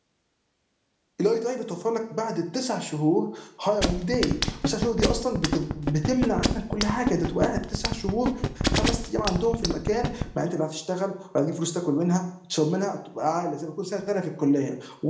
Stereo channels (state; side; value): identical; both; correlation 1.00